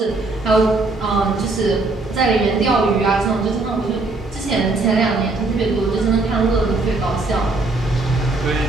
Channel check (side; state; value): left; quieter; 3.3 dB